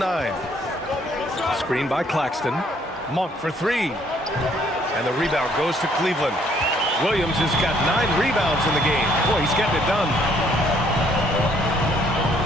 Screen by Claxton. Monk for 3. And the rebound goes to Cleveland. Williams has got 9 rebounds in the game. Boy, he's getting it done.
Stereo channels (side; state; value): both; normal; correlation 0.65